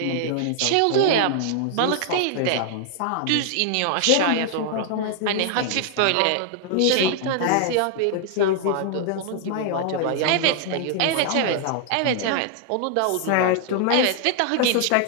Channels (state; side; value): different; both; correlation 0.00